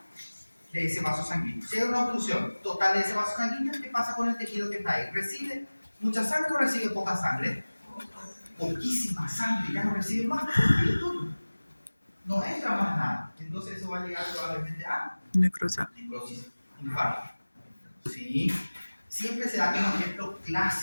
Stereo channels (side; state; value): both; inverted; correlation -1.00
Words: de ese vaso sanguíneo. Si hay una obstrucción total de ese vaso sanguíneo, ¿qué pasa con el tejido que está ahí? ¿Recibe mucha sangre o recibe poca sangre? Poquísima sangre, ya no recibe más, no entra más nada. Entonces eso va a llegar probablemente a necrosis, infarto. ¿Sí? Siempre se da como ejemplo